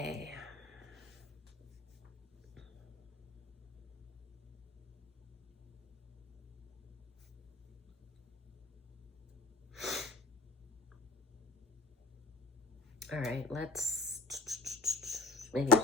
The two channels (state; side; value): quieter; right; 3.3 dB